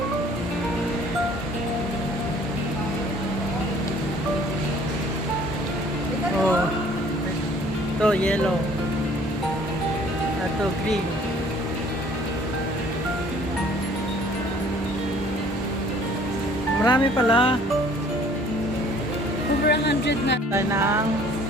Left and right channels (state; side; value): normal; both; correlation 0.56